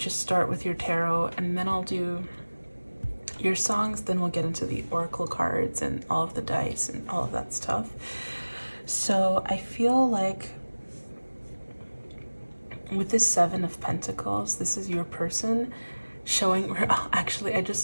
is start with your tarot, and then I'll do your songs, then we'll get into the oracle cards and all of the dice and all of that stuff. So I feel like with this 7 of Pentacles, this is your person showing, actually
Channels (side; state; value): both; inverted; correlation -1.00